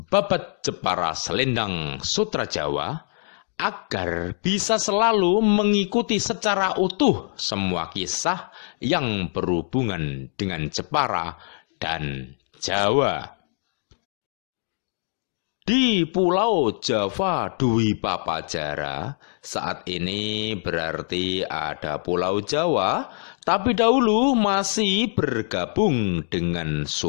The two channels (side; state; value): right; silent; 57 dB below the other